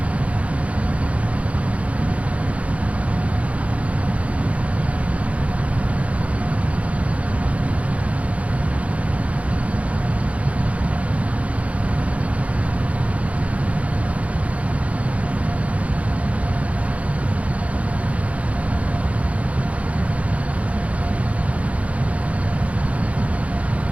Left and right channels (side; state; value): left; late; 0.065 ms